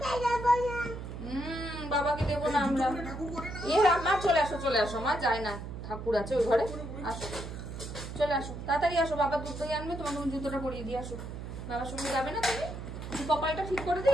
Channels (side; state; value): right; noise; hum, 8 dB below the sound